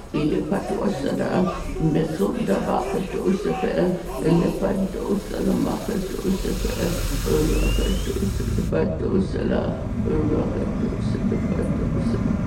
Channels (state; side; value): identical; both; correlation 1.00